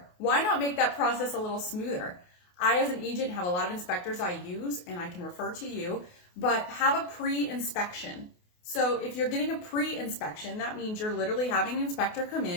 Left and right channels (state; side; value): late; right; 28 ms